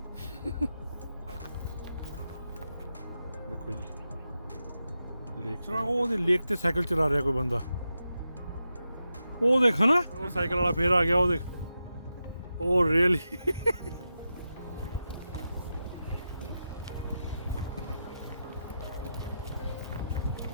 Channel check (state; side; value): inverted; both; correlation -0.88